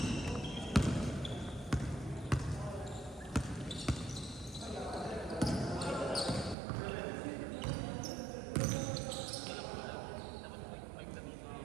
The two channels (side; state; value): left; drops out; at 6.6 s